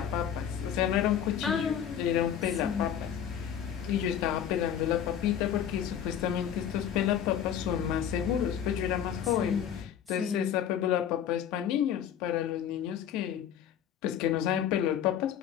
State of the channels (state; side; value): quieter; right; 9.3 dB